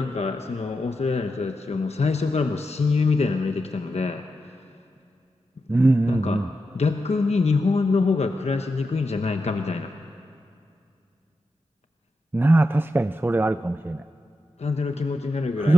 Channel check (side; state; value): both; normal; correlation 0.88